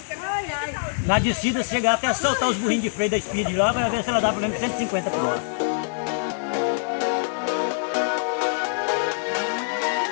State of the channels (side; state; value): right; silent; 57 dB below the other